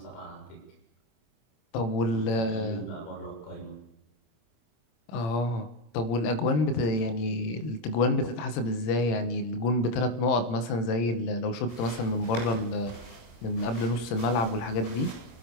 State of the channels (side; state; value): right; late; 25 ms